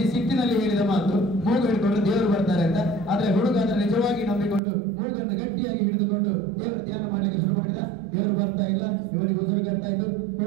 ಸಿಟ್ಟಿನಲ್ಲಿ ಹೇಳಿದ ಮಾತು ಮೂಗು ಹಿಡ್ಕೊಂಡು ದೇವರು ಬರ್ತಾರೆ ಅಂತ. ಆದ್ರೆ ಹುಡುಗ ಅದರ ನಿಜವಾಗಿ ನಂಬಿಕೊಂಡು ಮೂಗನ್ನು ಗಟ್ಟಿಯಾಗಿ ಹಿಡಿದುಕೊಂಡು ದೇವರ ಧ್ಯಾನ ಮಾಡಲಿಕ್ಕೆ ಶುರು ಮಾಡಿದ. ದೇವರು ಬರ್ತಾ ಇಲ್ಲ, ಇವನಿಗೆ ಉಸಿರು ಕಟ್ತಾ ಇದ್ದು.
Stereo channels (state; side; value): drops out; left; at 4.6 s